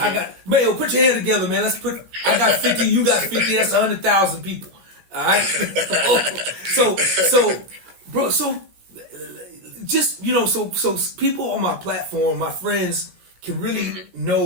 got Mayo. Put your hand together, man. I got 50. You got 50. That's 100,000 people. All right. So, bro. So, just so people on my platform, my friends, can really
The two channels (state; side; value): late; left; 17 ms